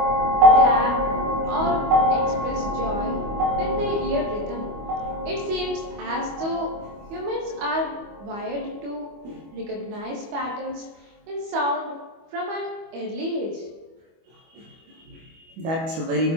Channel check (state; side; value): late; left; 25 ms